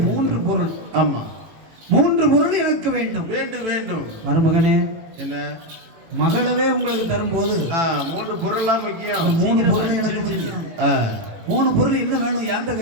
3 பொருள். 3 பொருள் எனக்கு வேண்டும். மருமகனே, என்ன மகளவே உங்களுக்கு தரும்போது 3 பொருள்லாம் முக்கியம். 3 பொருள் எனக்கு தெரியும். 3 பொருள் என்ன வேணும்? யார்கிட்ட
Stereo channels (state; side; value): late; left; 18 ms